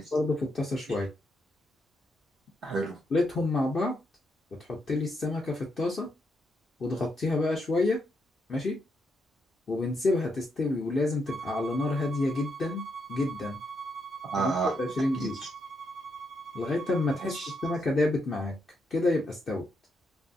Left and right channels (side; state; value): both; normal; correlation 0.80